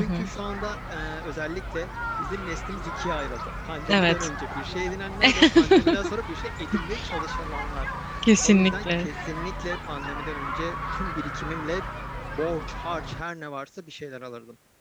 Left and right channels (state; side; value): identical; both; correlation 1.00